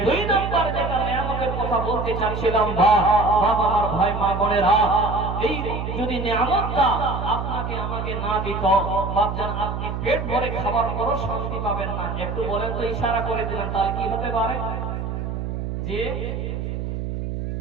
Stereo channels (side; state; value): right; noise; hum, 4 dB below the sound